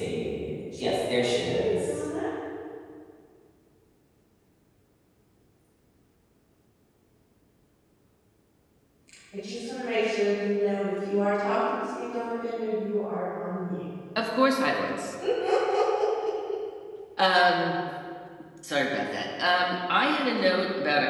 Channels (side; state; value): both; identical; correlation 1.00